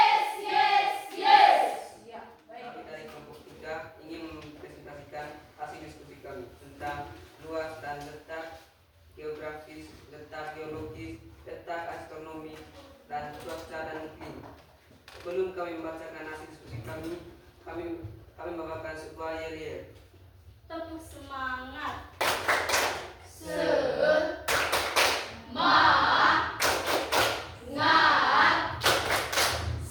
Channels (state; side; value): identical; both; correlation 1.00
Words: yes, yes. Ya, baik. Kami dari kelompok 3 ingin mempresentasikan hasil diskusi kami tentang luas dan letak geografis, letak geologis, letak astronomi, dan cuaca dan iklim. Sebelum kami membacakan hasil diskusi kami membawakan sebuah yel-yel. Tepuk semangat. Semangat.